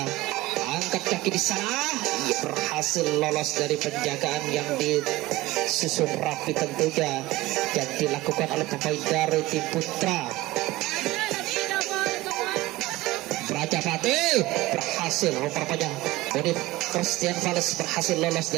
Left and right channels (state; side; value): quieter; left; 18.5 dB